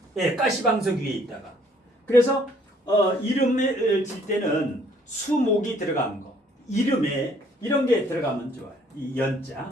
예, 가시방석 위에 있다가. 그래서 이름을 질 때는 수목이 들어간 거. 이름에 이런 게 들어가면 좋아요. 이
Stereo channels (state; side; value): normal; both; correlation 0.62